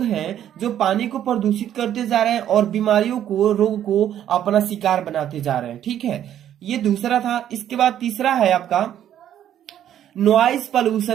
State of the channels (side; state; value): left; quieter; 10.8 dB